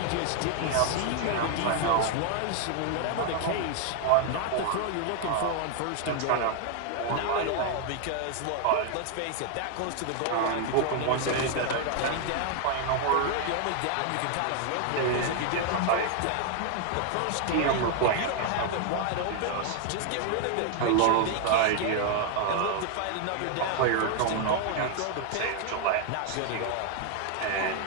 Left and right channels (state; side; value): different; both; correlation 0.00